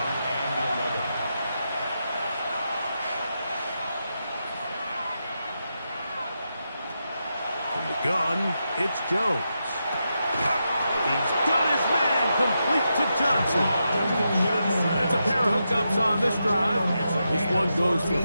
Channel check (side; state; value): both; inverted; correlation -0.86